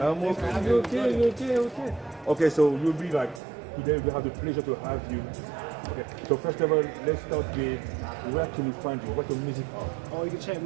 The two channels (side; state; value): left; drops out; at 3.4 s